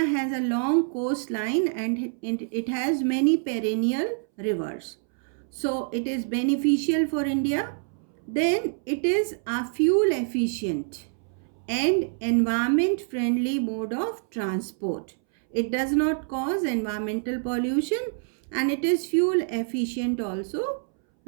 a long coastline and it has many perennial rivers. So it is beneficial for India. Then it is a fuel efficient and environment friendly mode of transport. It does not cause environmental pollution and it is fuel efficient also,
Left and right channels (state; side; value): silent; left; 61 dB below the other